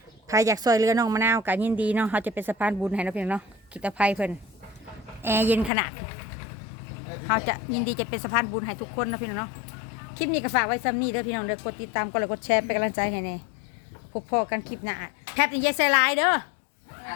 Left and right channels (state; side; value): drops out; right; at 5.7 s